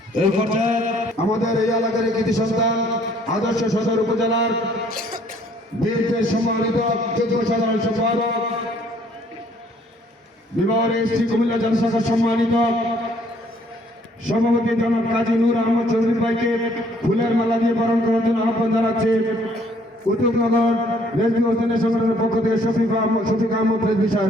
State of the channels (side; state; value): both; normal; correlation 0.62